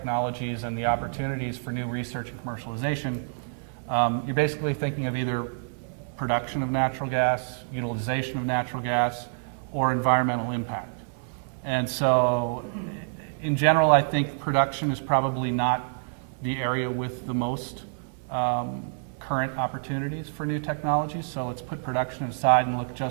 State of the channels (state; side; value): silent; left; digital silence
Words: and the opportunities for new research and commercialization, you're basically thinking of either production of natural gas, utilization of natural gas, or environmental impact. And so in general, I think production is probably not the area with the most current opportunities for new technologies. So let's put production aside and look